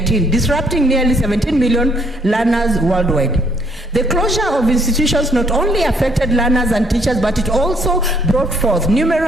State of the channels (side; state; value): both; normal; correlation 0.67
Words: disrupting nearly 17 million learners worldwide. The closure of institutions not only affected learners and teachers, but it also brought forth